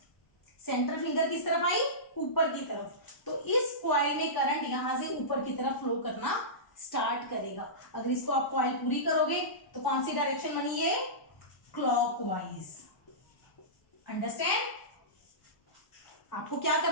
सेंट्रल फिंगर किस तरफ आई? ऊपर की तरफ। तो इस कॉइल में करंट यहां से ऊपर की तरफ फ्लो करना स्टार्ट करेगा। अगर इसको आप कॉइल पूरी करोगे तो कौन सी डायरेक्शन बनी? ये क्लॉकवाइज। अंडरस्टैंड? आपको क्या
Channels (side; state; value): right; late; 1.0 ms